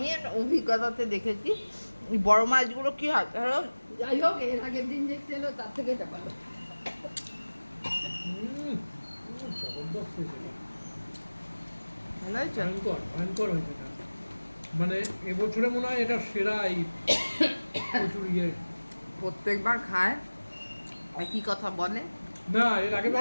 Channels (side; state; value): both; inverted; correlation -1.00